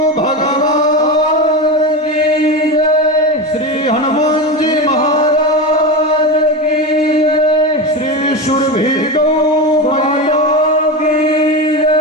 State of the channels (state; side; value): normal; both; correlation 0.20